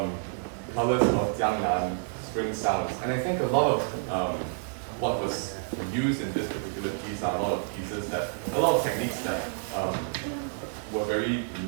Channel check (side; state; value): left; silent; digital silence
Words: Colors of Jiangnan, spring sounds. And I think a lot of what was used in this particular piece are a lot of techniques that were very